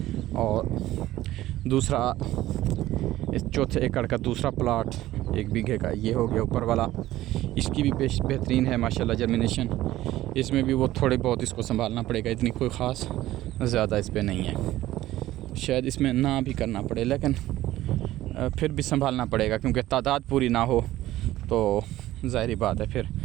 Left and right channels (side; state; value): left; quieter; 15.2 dB